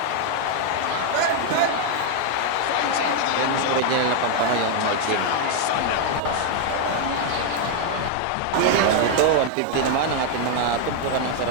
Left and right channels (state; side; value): different; both; correlation 0.00